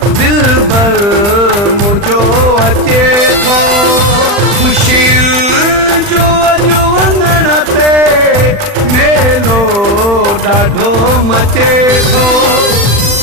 दिल भर मुझो अचे थो ख़ुशी जो अॼु वञण ते मेलो ॾाढो मचे थो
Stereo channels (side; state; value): left; late; 40 ms